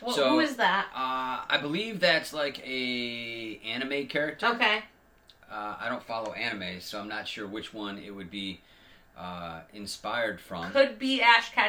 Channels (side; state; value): both; identical; correlation 1.00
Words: So, who is that? I believe that's like a anime character. Okay. I don't follow anime, so I'm not sure which one it would be inspired from. Could be Ash